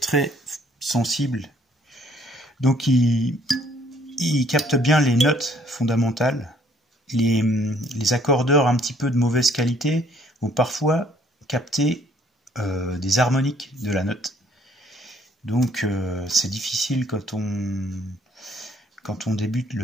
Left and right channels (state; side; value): normal; both; correlation 0.62